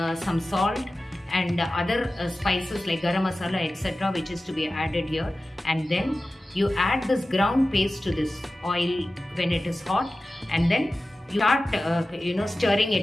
some salt and other spices like garam masala, etc., which is to be added here. And then you add this ground paste to this oil when it is hot, and then you start stirring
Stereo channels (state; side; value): normal; both; correlation 0.95